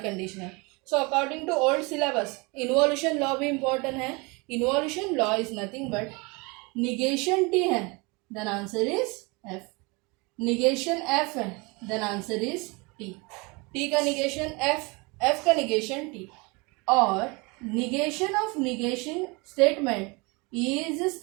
biconditional. So according to old syllabus involution law भी इम्पोर्टेंट है. Involution law is nothing but negation T है then answer is F. Negation F है then answer is T. T का negation F, F का negation T. और negation of negation statement is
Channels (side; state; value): left; quieter; 27.6 dB